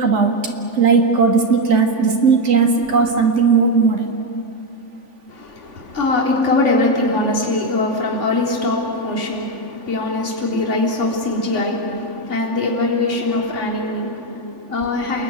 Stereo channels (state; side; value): late; left; 3.5 ms